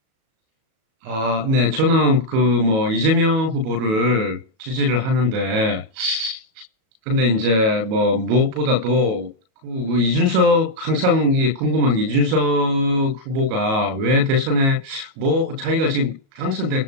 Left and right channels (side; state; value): left; late; 37 ms